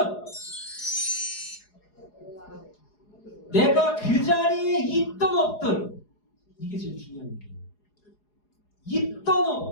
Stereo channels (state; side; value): late; right; 4.8 ms